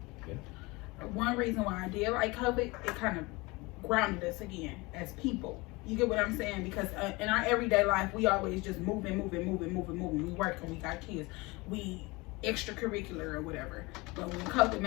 One reason why I did like COVID, it kind of grounded us again as people. You get what I'm saying? Because in our everyday life, we always just moving. We work and we got kids. We extracurricular or whatever. But when COVID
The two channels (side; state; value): right; quieter; 24.0 dB